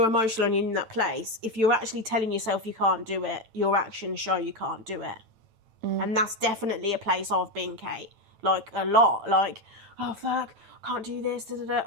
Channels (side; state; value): left; late; 9.0 ms